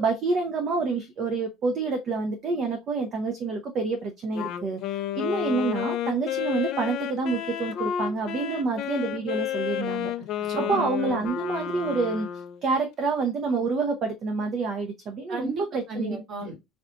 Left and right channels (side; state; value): both; normal; correlation 0.51